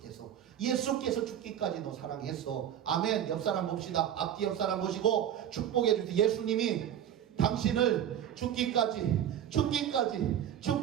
예수께서 죽기까지 너 사랑했어. 아멘. 옆 사람 봅시다. 앞뒤 옆 사람 보시고 축복해 주세요. 예수님이 당신을 죽기까지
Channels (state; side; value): quieter; left; 10.2 dB